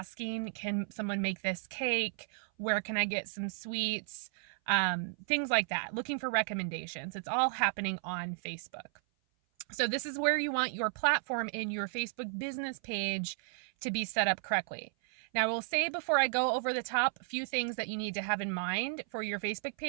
can someone make this cake? Where can I get some sweets? Things like that, looking for recommendations. It's all happening on Facebook. So this is where you want your platform in your Facebook business page to be set up correctly. Now, I will say before I go over the top, a few things that you need to have in mind for your Facebook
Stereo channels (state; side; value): silent; left; 55 dB below the other